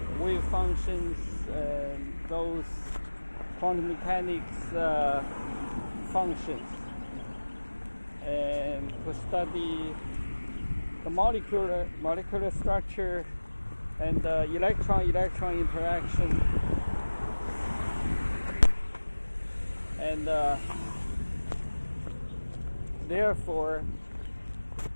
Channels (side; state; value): both; inverted; correlation -1.00